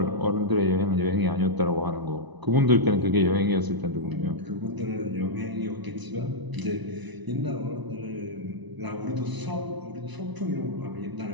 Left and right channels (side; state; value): left; late; 1.0 ms